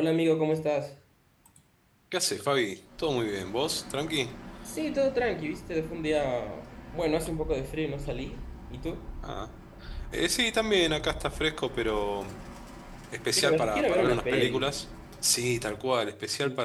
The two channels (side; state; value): both; identical; correlation 1.00